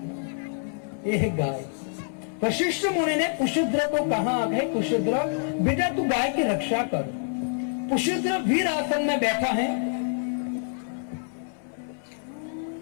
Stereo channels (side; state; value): right; silent; 60 dB below the other